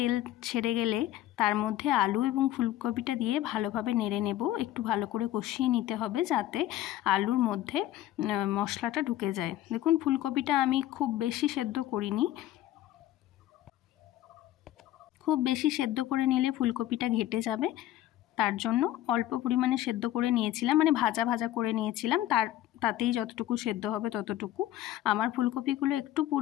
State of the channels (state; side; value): quieter; right; 13.7 dB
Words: ছেড়ে গেলে তার মধ্যে আলু এবং ফুলকপিটা দিয়ে ভালোভাবে নেড়ে নেব। একটু ভালো করে কষিয়ে নিতে হবে যাতে আলুর মধ্যে মশলাটা ঢুকে যায়। দেখুন ফুলকপিটা আমি খুব বেশি সেদ্ধ করিনি, খুব বেশি সেদ্ধ করে নিলে ফুলকপিটা ঘেটে যাবে, তার জন্য অল্প পরিমাণে সেদ্ধ করে নিয়েছিলাম, মানে ভাজা করে নিয়েছিলাম। তাতেই যতটুকু সেদ্ধ হবে ততটুকু। আমার ফুলকপিগুলো একটু